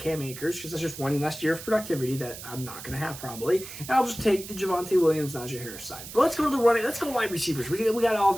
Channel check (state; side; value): noise; right; hiss, 12 dB below the sound